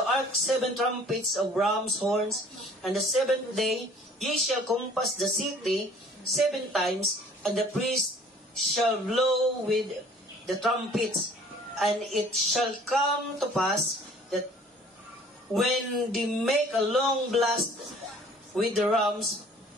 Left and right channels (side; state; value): both; normal; correlation 0.53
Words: ark 7 trumpets of ram's horns, and the 7th day ye shall compass the city 7 times, and the priest shall blow with the trumpets. And it shall come to pass that when they make a long blast with the ram's